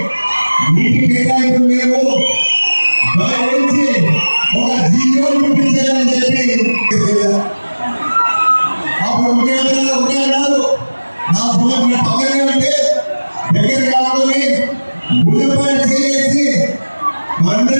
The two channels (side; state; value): both; inverted; correlation -1.00